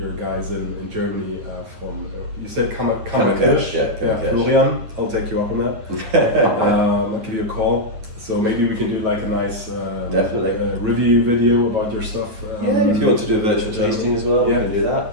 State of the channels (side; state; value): left; late; 9.5 ms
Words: guys in Germany from, you said Kammerkirch? Yeah, Florian, I'll take you up on that. I'll give you a call. So maybe we can do like a nice review video about your stuff. If you want to do a virtual tasting as well, we can do that.